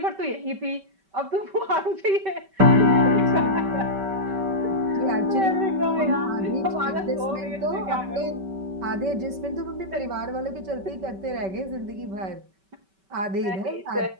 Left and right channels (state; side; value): late; left; 5.2 ms